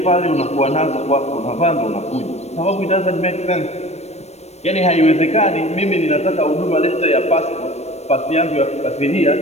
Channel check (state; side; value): late; right; 0.31 ms